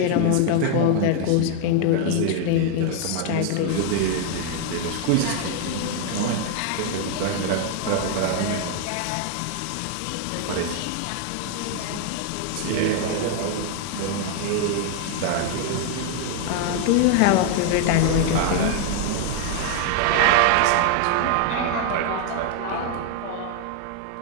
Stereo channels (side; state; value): both; different; correlation 0.00